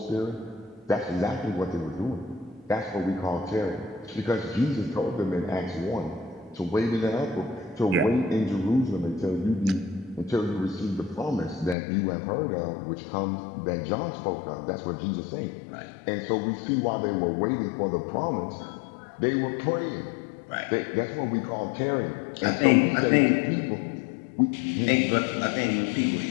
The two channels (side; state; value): right; drops out; at 11.8 s